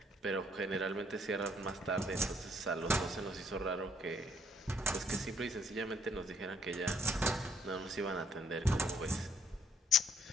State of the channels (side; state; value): both; normal; correlation 0.66